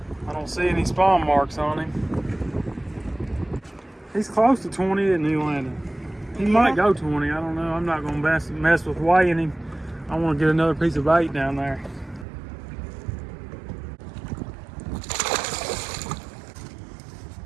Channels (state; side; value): drops out; left; at 12.2 s